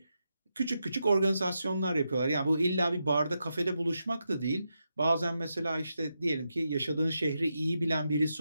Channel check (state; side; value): inverted; both; correlation -0.86